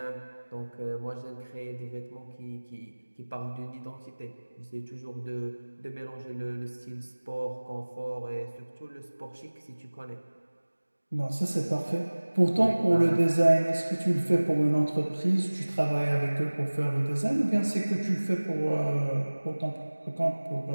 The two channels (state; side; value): inverted; both; correlation -1.00